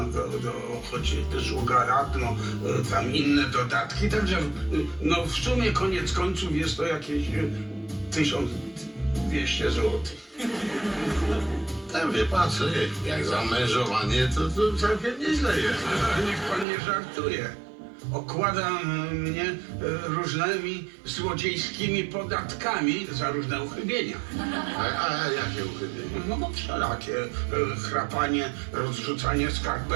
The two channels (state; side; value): drops out; left; at 16.7 s